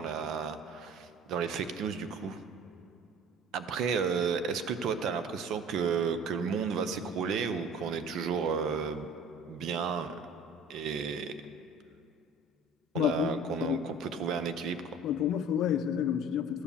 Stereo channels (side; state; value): both; normal; correlation 0.45